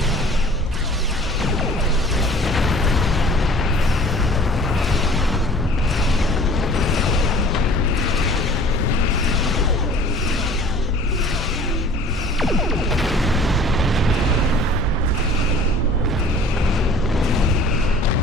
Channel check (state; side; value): normal; both; correlation 0.48